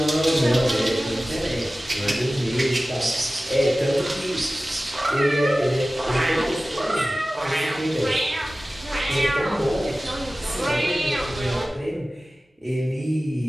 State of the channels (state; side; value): normal; both; correlation 0.96